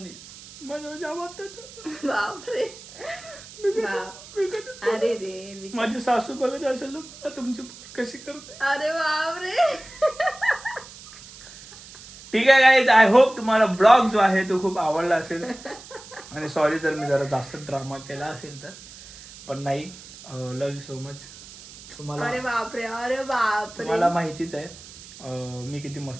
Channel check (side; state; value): right; noise; hiss, 18 dB below the sound